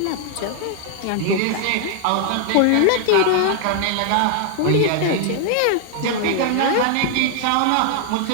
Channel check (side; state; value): both; different; correlation 0.00